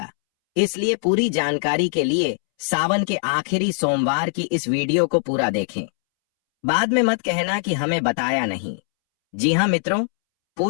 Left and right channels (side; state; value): right; silent; 64 dB below the other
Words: इसलिए पूरी जानकारी के लिए सावन के आखिरी सोमवार की इस वीडियो को पूरा देखें। बाद में मत कहना कि हमें बताया नहीं। जी हाँ मित्रों,